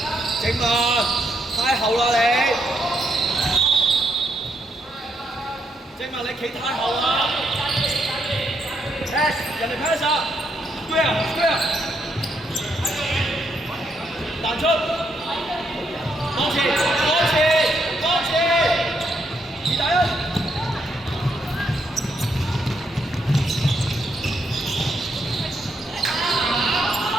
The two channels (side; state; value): both; normal; correlation 0.77